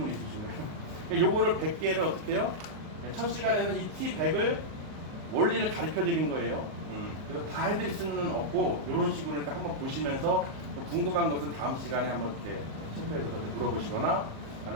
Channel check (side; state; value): left; late; 38 ms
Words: 있으신가요? 요거를 100개를 어떻게 해요? 첫 시간에는 이 T100을 원리를 가르쳐 드린 거예요. 그래서 다 해드릴 수는 없고 이런 식으로 그러니까 한번 보시면서 궁금한 것은 다음 시간에 한번 이렇게 체크해서 물어보시거나